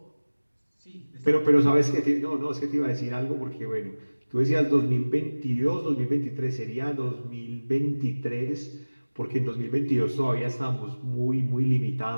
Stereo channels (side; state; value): both; inverted; correlation -1.00